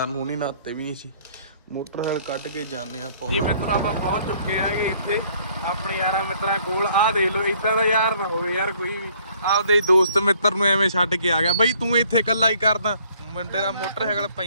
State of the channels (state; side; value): inverted; both; correlation -0.61